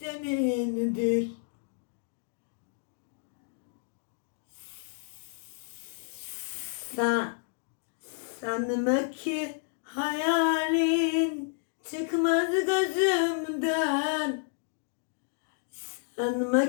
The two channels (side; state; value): right; silent; digital silence